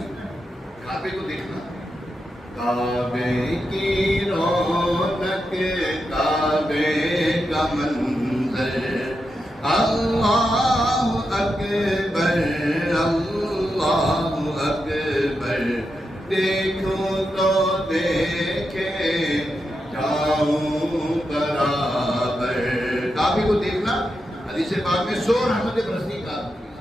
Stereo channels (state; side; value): normal; both; correlation 0.87